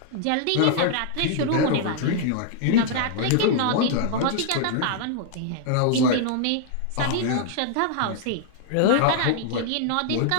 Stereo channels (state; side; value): different; both; correlation -0.01